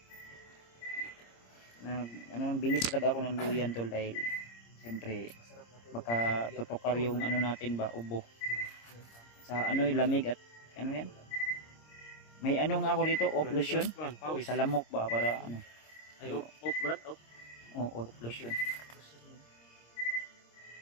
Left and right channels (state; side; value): late; right; 26 ms